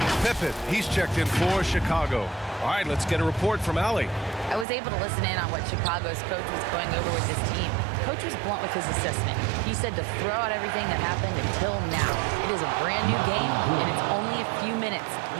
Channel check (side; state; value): left; drops out; at 4.7 s